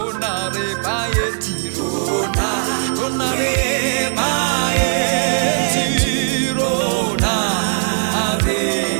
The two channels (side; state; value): left; silent; digital silence